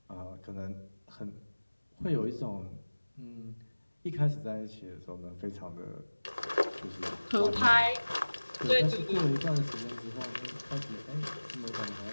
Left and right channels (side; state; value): both; inverted; correlation -1.00